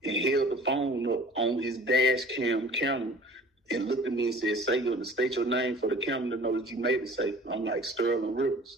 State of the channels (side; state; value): both; normal; correlation 0.46